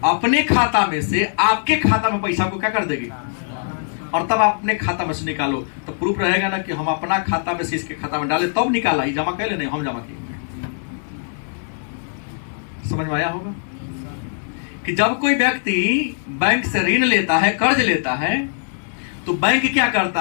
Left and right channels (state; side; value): silent; right; digital silence